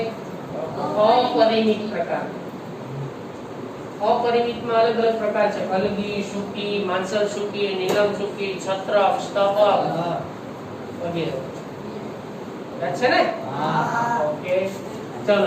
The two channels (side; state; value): both; identical; correlation 1.00